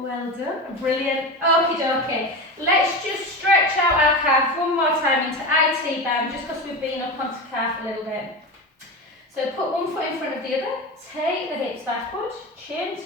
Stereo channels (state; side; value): normal; both; correlation 0.24